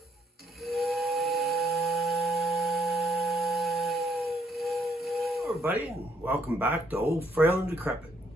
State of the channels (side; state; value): both; normal; correlation 0.70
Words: everybody, and welcome back to Old Frail and Decrepit.